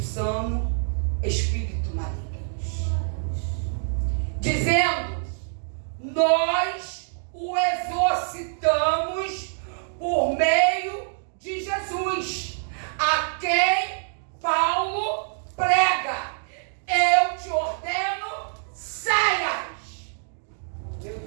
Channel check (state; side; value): silent; left; digital silence